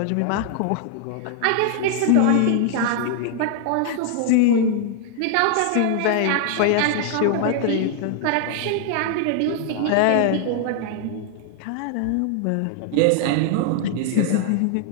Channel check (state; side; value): different; both; correlation 0.00